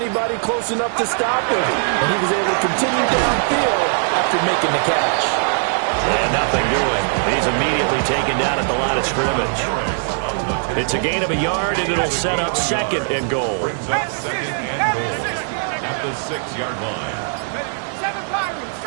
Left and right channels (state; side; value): silent; left; 66 dB below the other